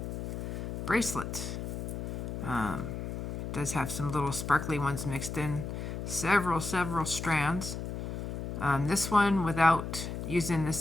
bracelet. Does have some little sparkly ones mixed in. Several strands. This one, without using this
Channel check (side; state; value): left; noise; hum, 5 dB below the sound